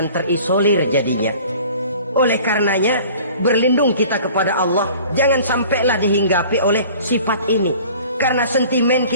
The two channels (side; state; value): both; inverted; correlation -0.47